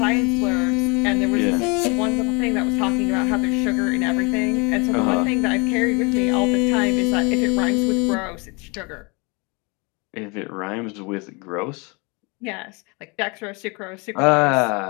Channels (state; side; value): quieter; right; 29.5 dB